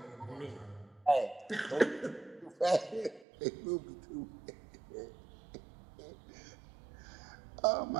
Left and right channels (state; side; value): drops out; left; at 3.2 s